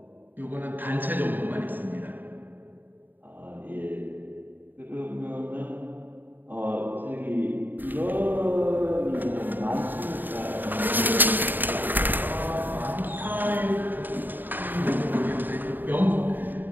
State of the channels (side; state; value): left; late; 0.090 ms